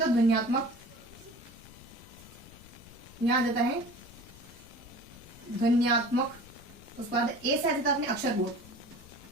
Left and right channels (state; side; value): noise; left; rumble, 20 dB below the sound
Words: है ध्वन्यात्मक, यहाँ जाता है ध्वन्यात्मक, उसके बाद ए से जाता है अपने अक्षरबोध।